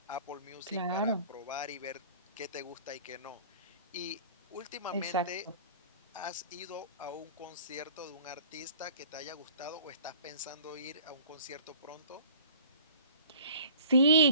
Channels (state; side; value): inverted; both; correlation -0.48